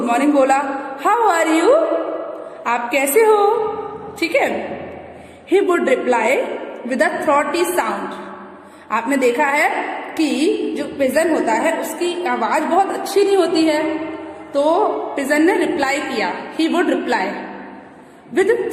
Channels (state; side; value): identical; both; correlation 1.00